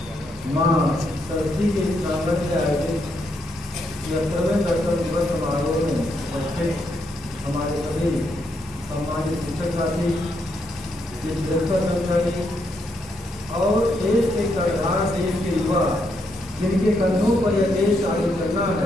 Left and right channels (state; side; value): normal; both; correlation 0.78